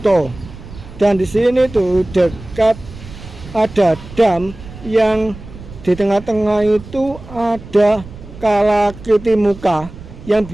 Dan di sini tuh dekat ada dam yang di tengah-tengah itu ada kalakiti muka yang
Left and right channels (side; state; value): right; noise; rumble, 16 dB below the sound